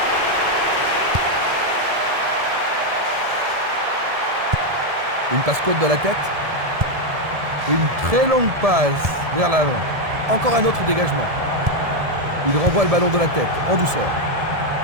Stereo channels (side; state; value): left; late; 1.7 ms